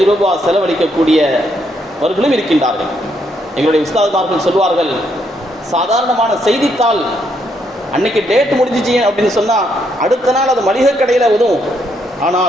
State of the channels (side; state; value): both; normal; correlation 0.75